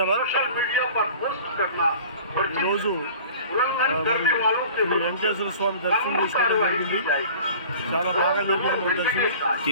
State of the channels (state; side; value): inverted; both; correlation -0.44